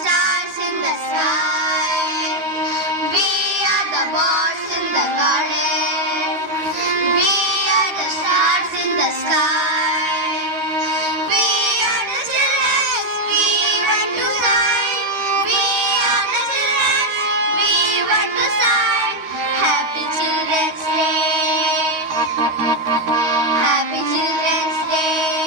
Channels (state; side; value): late; left; 13 ms